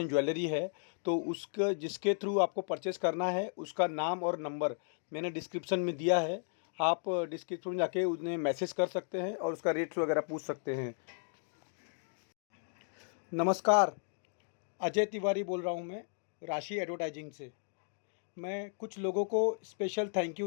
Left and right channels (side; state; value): right; silent; digital silence